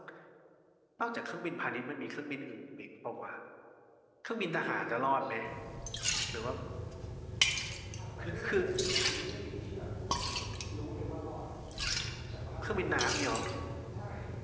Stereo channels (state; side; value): identical; both; correlation 1.00